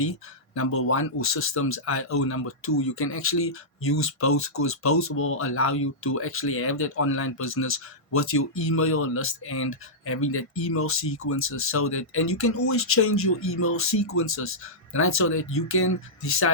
number one, or Systems.io, number two. You can actually use both, because both will allow you to actually have that online business with your email list and having that email sequences, so that, and you can always change your email sequences, right? So that you can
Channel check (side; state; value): right; late; 1.5 ms